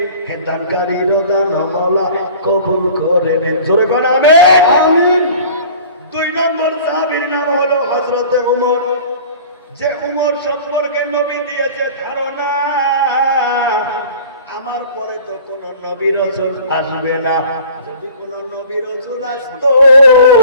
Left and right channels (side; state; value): both; inverted; correlation -0.45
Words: হে দানকারীর দান মওলা কবুল করে নেন। জোরে কোন আমিন। 2 নম্বর সাহাবীর নাম হলো হযরত উমর। যে উমর সম্পর্কে নবী দিয়েছে ধারণা, আমার পরে তো কোন নবী রাসূল আসবে না। যদি কোন নবী রাসূল আসতো,